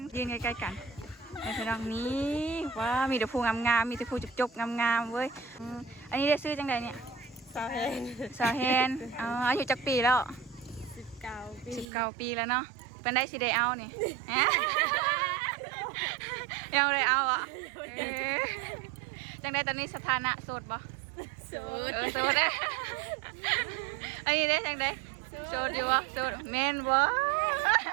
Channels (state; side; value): drops out; left; at 11.9 s